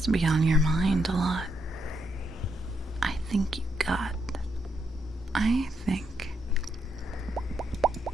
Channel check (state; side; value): normal; both; correlation 0.78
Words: to be on your mind a lot. I think